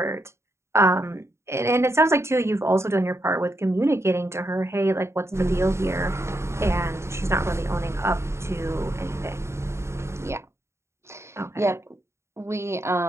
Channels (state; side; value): late; left; 0.13 ms